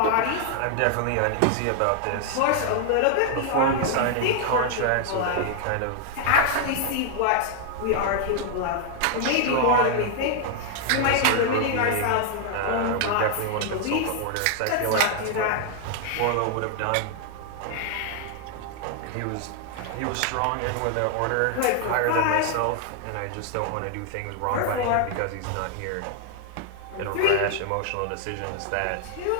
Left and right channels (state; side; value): different; both; correlation 0.00